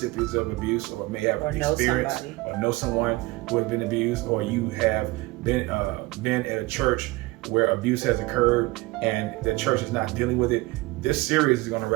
of abuse, or may have experienced or know someone who has been abused, or you have been at a church where abuse has occurred and the church is not dealing with it. This series is going to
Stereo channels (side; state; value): left; quieter; 21.8 dB